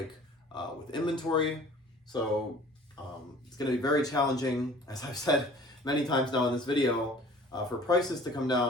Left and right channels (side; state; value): both; normal; correlation 0.48